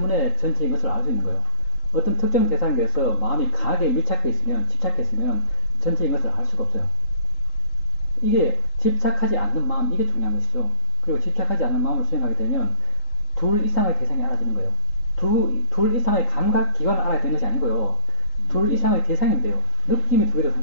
전체인 것을 알 수 있는 거예요. 어떤 특정 대상에 대해서 마음이 강하게 밀착해 있으면, 집착했으면 전체인 것을 알 수가 없어요. 이게 집착하지 않는 마음, 이게 중요한 것이죠. 그리고 집착하지 않는 마음을 수행하게 되면 둘 이상의 대상이 알아지는 거예요. 둘 이상의 감각 기관을 알아야 되는 것이 아니고요. 둘 이상의 대상이면 돼요. 느낌이 두 개도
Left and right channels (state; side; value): late; right; 3.8 ms